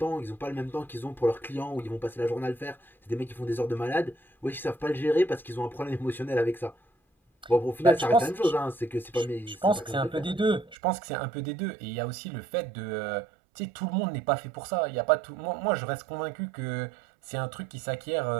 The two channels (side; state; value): left; drops out; at 10.8 s